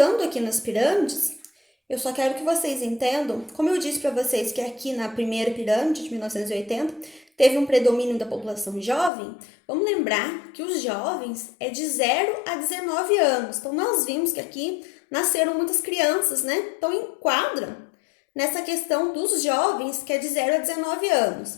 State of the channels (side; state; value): right; drops out; at 9.1 s